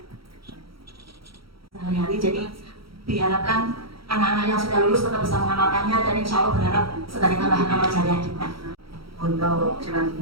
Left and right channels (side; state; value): left; late; 0.75 ms